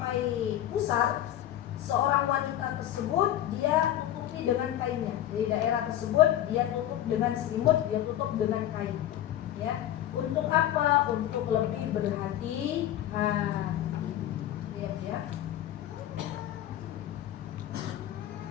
pusar, seorang wanita tersebut dia tutupi dengan kainnya. Jadi daerah tersebut dia tutup dengan selimut, dia tutup dengan kain. Ya, untuk apa? Untuk lebih berhati-hati. Ya.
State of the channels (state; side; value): quieter; right; 12.3 dB